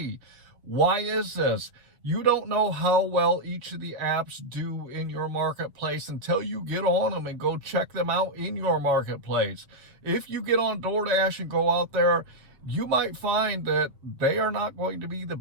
Why is this? You don't know how well each of the apps do in your marketplace until you get on them and go check them out in your marketplace. If you get on DoorDash and go out there, you might find that they are not going to be the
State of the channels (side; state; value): left; late; 7.1 ms